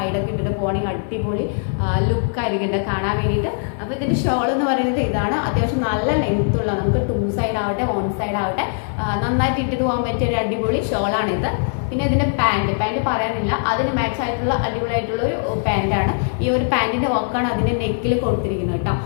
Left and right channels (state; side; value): silent; right; 61 dB below the other